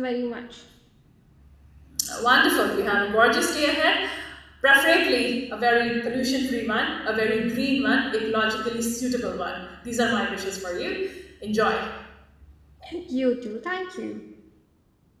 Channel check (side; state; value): both; identical; correlation 1.00